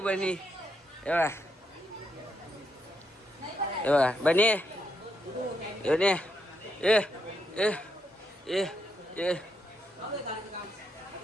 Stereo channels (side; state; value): both; normal; correlation 0.79